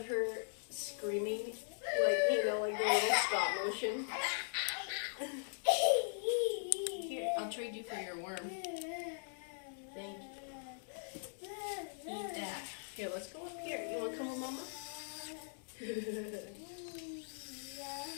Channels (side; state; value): right; silent; digital silence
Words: her screaming, like, you know, like the little stop motion. Here, I'll trade you for your worm. Thank you. Eat that. Here, let's go up here. You want to come with Mama?